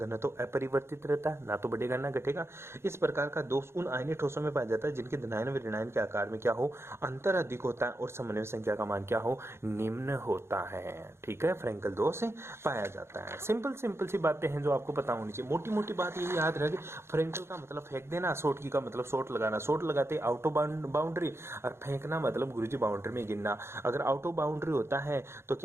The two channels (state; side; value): late; left; 0.12 ms